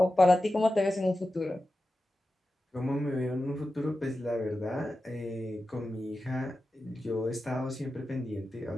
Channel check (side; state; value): both; normal; correlation 0.93